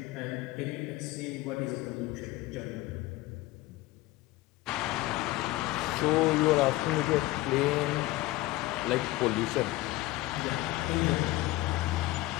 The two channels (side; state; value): right; quieter; 18.1 dB